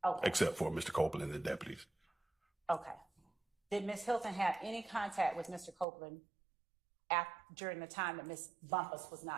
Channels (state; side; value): drops out; left; at 5.9 s